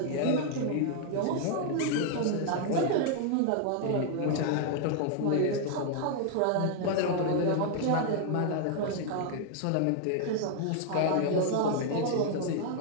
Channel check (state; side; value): different; both; correlation 0.00